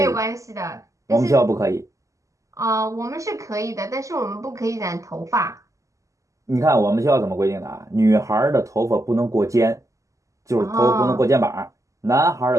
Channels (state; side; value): late; left; 0.16 ms